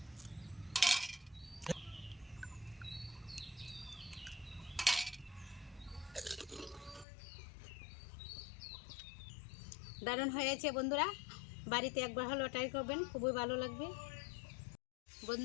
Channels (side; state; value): right; drops out; at 7.1 s